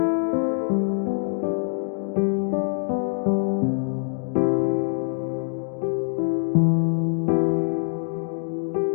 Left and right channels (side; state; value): right; silent; digital silence